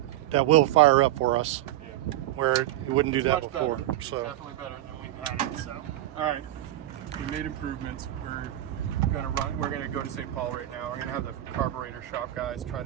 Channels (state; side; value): quieter; left; 14.3 dB